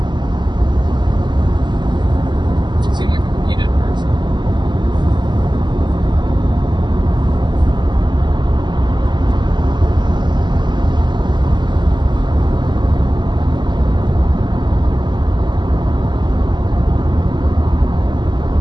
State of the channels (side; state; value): left; late; 0.21 ms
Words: Seem like a needed person.